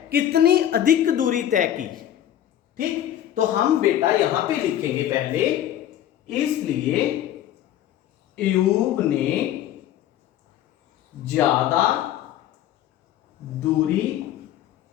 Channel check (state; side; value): quieter; right; 11.6 dB